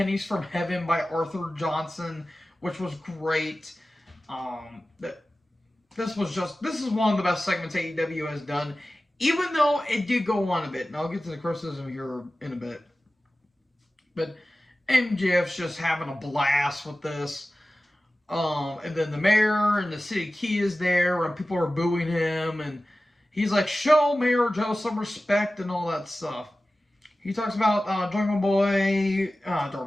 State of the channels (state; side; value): normal; both; correlation 0.96